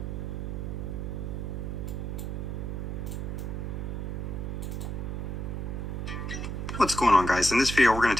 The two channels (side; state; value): right; noise; hum, 3 dB below the sound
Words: What's going on, guys? In this video, we're going